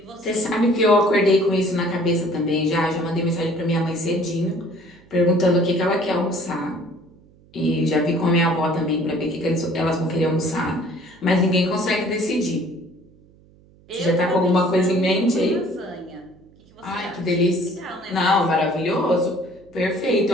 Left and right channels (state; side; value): noise; right; hum, 28 dB below the sound